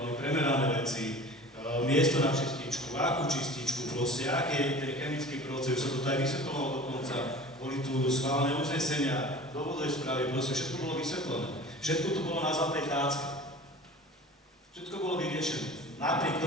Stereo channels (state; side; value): normal; both; correlation 0.40